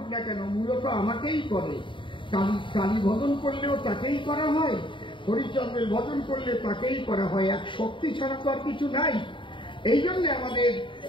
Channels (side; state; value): right; late; 0.24 ms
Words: না কেন মূলত আমাকেই করে। কালী ভজন করলেও তাকেই করা হয়, হরিচন্দ্রের ভজন করলে তাকেই করা হয়, এক শক্তি ছাড়া তো আর কিছু নাই। এই জন্য আমাদের